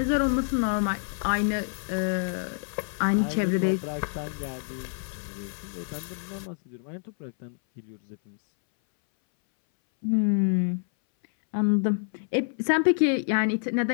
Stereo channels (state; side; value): silent; right; 60 dB below the other